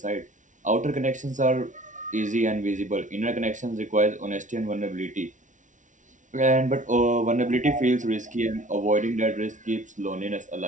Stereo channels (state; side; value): late; left; 0.37 ms